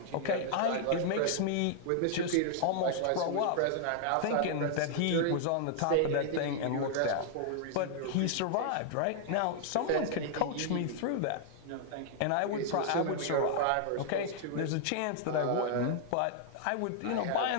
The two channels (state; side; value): different; both; correlation -0.01